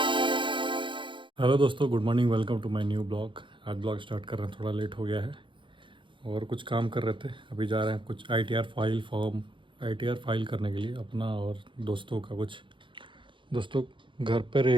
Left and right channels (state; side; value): late; left; 0.24 ms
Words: Hello दोस्तों, good morning, welcome to my new blog. आज blog start कर रहे हैं, थोड़ा late हो गया है और कुछ काम कर रहे थे। अभी जा रहे हैं कुछ आईटीआर फाइल करने के लिए अपना और दोस्तों का। कुछ दोस्तों घर पर